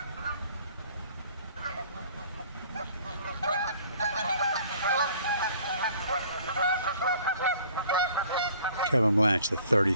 Kevin Blanch, the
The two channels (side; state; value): both; inverted; correlation -0.54